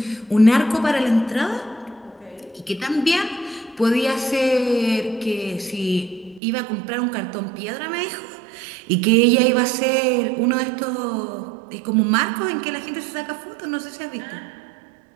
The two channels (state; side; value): drops out; left; at 6.4 s